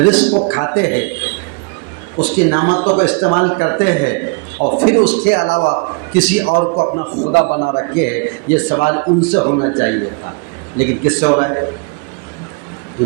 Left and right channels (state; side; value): quieter; left; 32.8 dB